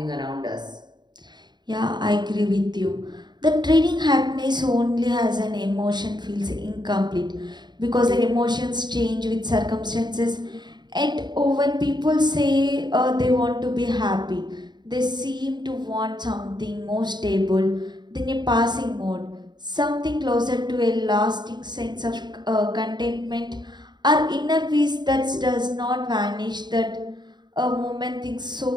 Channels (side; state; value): left; late; 0.21 ms